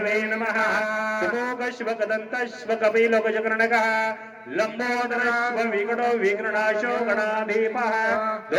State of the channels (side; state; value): both; identical; correlation 1.00